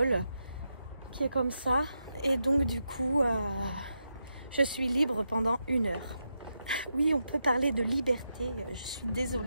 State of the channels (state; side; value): inverted; both; correlation -0.86